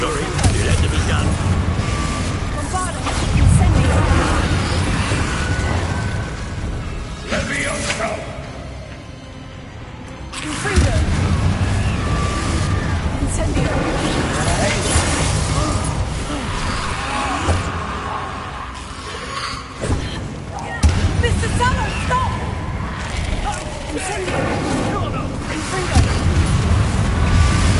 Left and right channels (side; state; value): both; identical; correlation 1.00